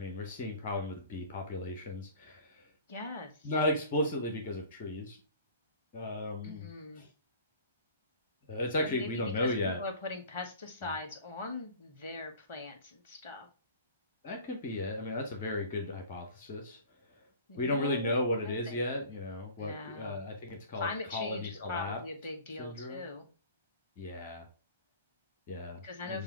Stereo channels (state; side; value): inverted; both; correlation -0.43